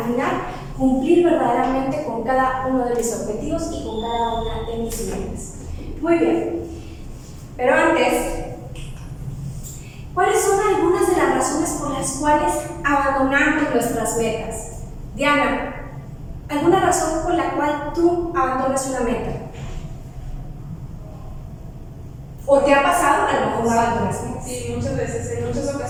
final, cumplir verdaderamente con cada uno de mis objetivos y con cada una de mis metas. Muy bien, pero antes las metas. Diana, ¿alguna razón por la cual tú abandonas una meta? ¿O te ha pasado a lo mejor no abandonas metas? Sí, muchas veces, en muchas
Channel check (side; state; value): both; identical; correlation 1.00